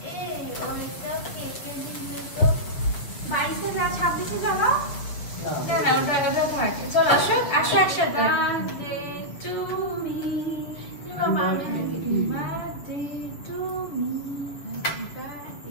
চলো আসো, আসো একসাথে। Birthday to me, birthday to me,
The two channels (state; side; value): late; right; 7.0 ms